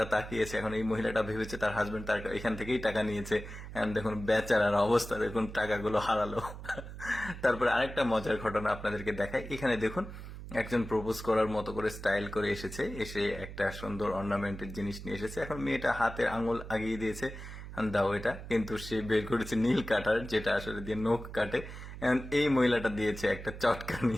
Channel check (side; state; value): right; noise; hum, 11 dB below the sound